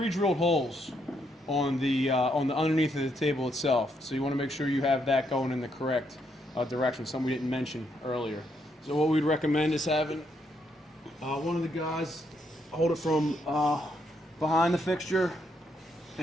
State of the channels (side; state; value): both; normal; correlation 0.76